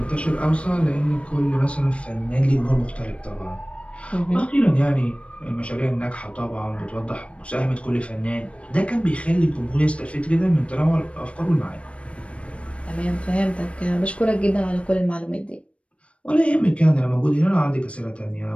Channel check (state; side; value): late; right; 0.061 ms